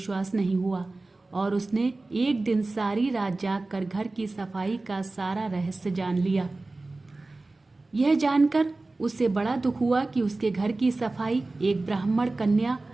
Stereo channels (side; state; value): left; quieter; 3.2 dB